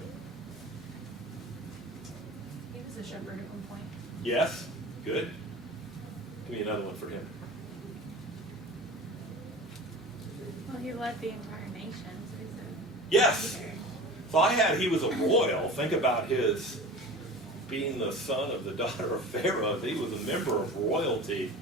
He was a shepherd at one point. Yes, good. Give me another one for him. Well, he led the entire nation, so he's a Yes. leader. So he was a royal. Think about his being the son of the daughter of Pharaoh. He was a member of royalty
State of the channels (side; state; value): both; normal; correlation 0.36